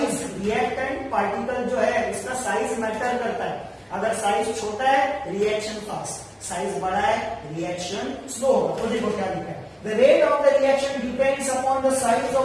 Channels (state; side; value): identical; both; correlation 1.00